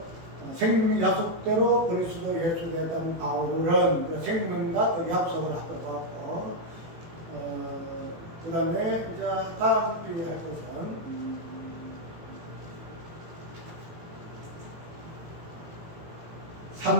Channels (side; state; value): left; late; 18 ms